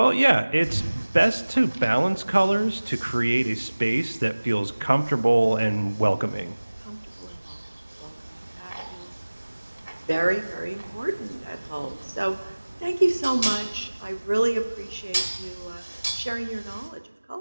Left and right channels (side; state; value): both; inverted; correlation -1.00